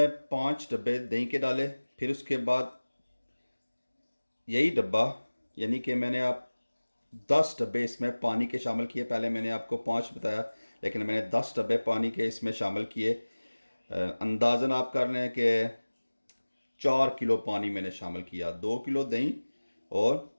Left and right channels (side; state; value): both; inverted; correlation -1.00